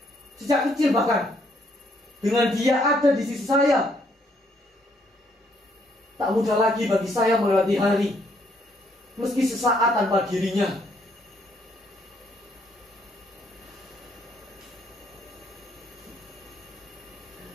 sejak kecil, bahkan dengan dia ada di sisi saya. Tak mudah lagi bagi saya melewati hari meski sesaat tanpa dirinya.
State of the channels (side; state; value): both; normal; correlation 0.70